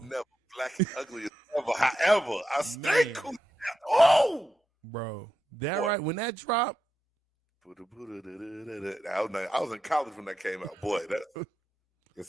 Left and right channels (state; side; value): normal; both; correlation 0.87